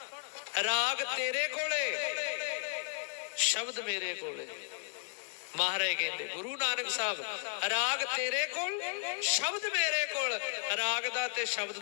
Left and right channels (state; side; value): quieter; right; 33.6 dB